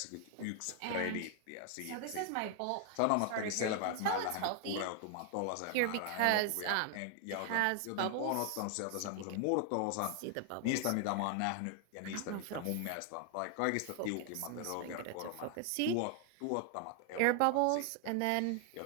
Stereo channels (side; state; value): both; different; correlation 0.00